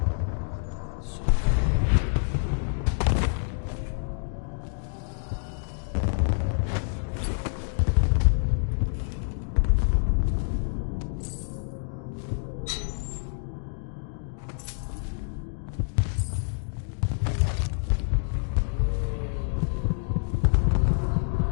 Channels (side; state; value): right; silent; digital silence